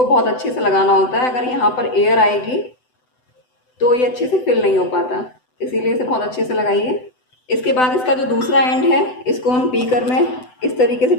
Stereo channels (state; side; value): late; right; 7.9 ms